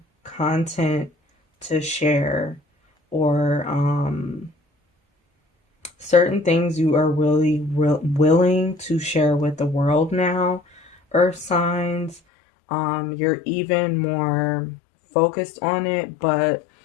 content to share, or certain things you are really willing to share with the world now, earth signs. You're even more focused on it, but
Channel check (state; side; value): drops out; right; at 12.2 s